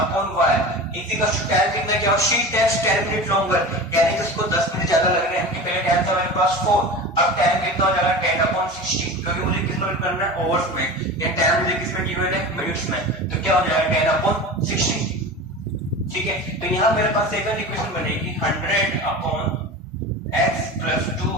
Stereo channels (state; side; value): normal; both; correlation 0.32